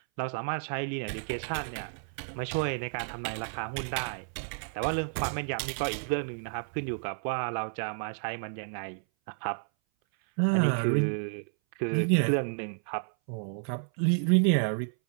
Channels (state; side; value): silent; left; 57 dB below the other